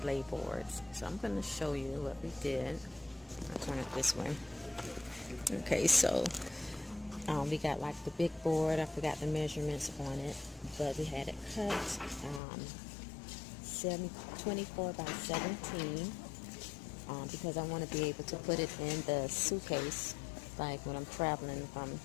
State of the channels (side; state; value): right; drops out; at 12.4 s